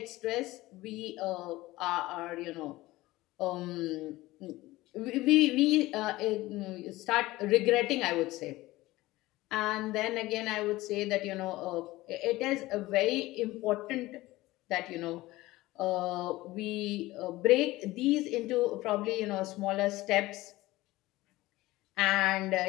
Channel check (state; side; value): quieter; right; 18.5 dB